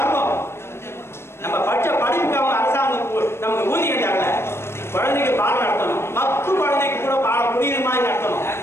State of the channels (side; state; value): right; late; 0.12 ms